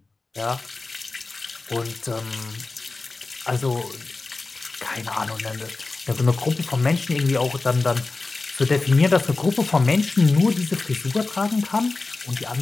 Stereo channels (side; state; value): right; quieter; 3.6 dB